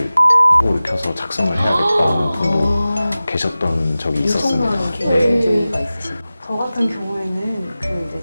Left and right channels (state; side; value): inverted; both; correlation -0.96